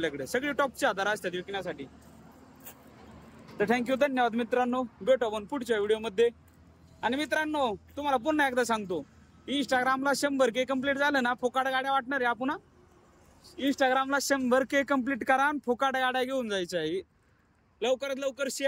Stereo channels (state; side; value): identical; both; correlation 1.00